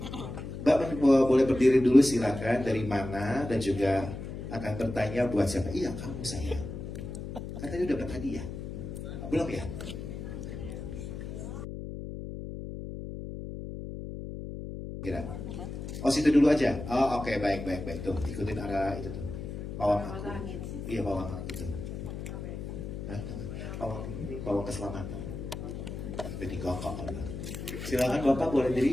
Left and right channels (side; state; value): left; noise; hum, 8 dB below the sound